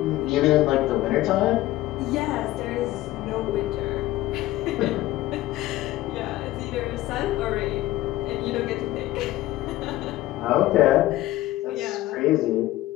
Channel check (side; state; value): right; quieter; 16.3 dB